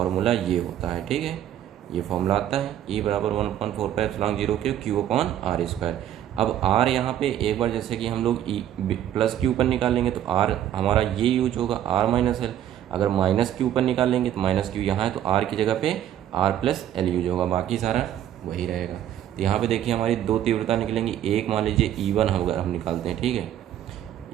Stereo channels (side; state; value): left; quieter; 11.2 dB